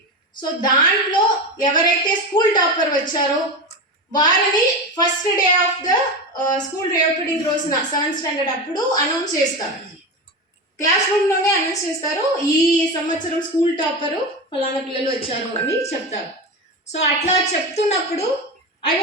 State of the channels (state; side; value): normal; both; correlation 0.21